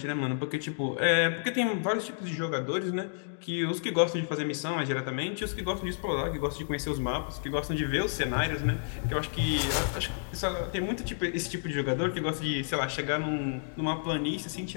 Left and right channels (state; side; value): silent; right; digital silence